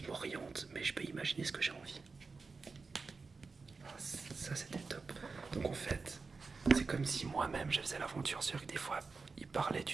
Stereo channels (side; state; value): left; quieter; 4.4 dB